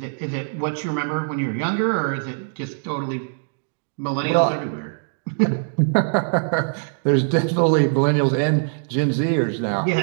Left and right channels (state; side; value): silent; left; digital silence